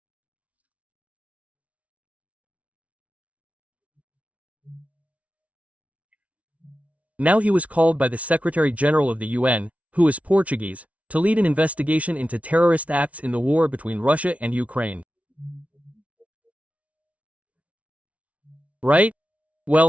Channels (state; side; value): late; left; 0.066 ms